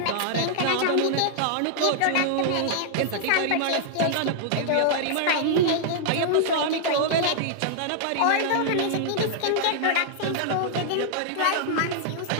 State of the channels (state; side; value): different; both; correlation -0.01